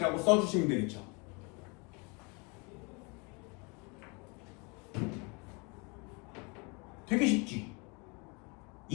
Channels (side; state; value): right; quieter; 30.6 dB